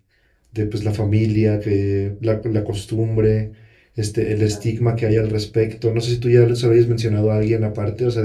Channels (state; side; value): identical; both; correlation 1.00